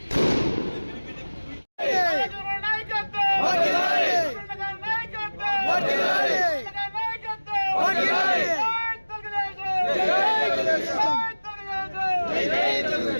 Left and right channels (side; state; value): both; inverted; correlation -1.00